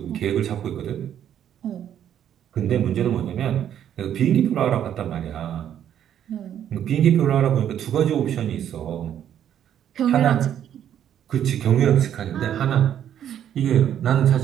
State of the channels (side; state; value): left; quieter; 10.0 dB